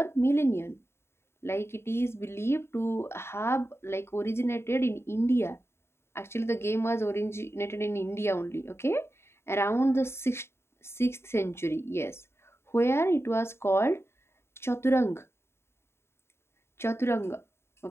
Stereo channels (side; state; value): right; late; 0.12 ms